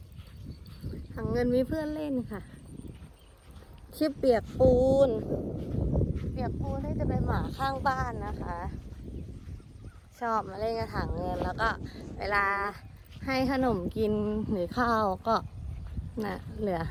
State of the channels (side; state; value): both; identical; correlation 1.00